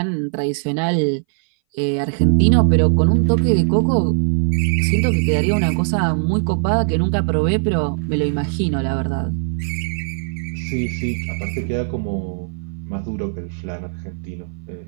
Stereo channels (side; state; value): left; silent; 61 dB below the other